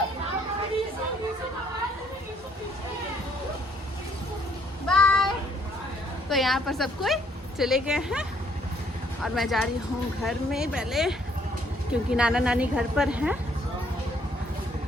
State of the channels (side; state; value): both; normal; correlation 0.66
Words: बाय। तो यहाँ पर सब कोई चले गए हैं और मैं जा रही हूँ घर में पहले, क्योंकि नाना नानी घर पर हैं,